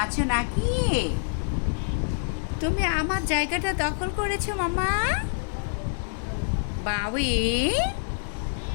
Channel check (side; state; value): right; silent; digital silence